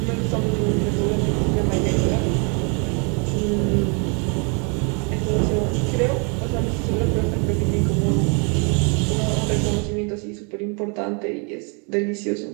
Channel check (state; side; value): quieter; left; 35.9 dB